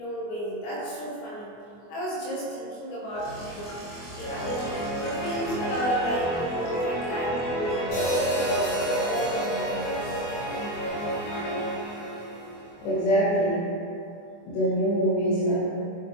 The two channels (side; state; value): right; late; 24 ms